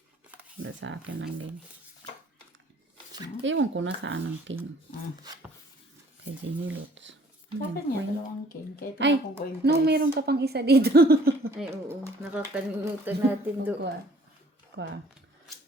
Wala sa akin ang game. Ewan ko na saan ang king. Kay Jenny Lutz. Bakit niya dalawang king? Kahit Ay, ako ko yung no, meron ka pang isa dito. Ay, oo. Nakakalimutan natin doon. Kwa.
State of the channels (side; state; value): both; normal; correlation 0.57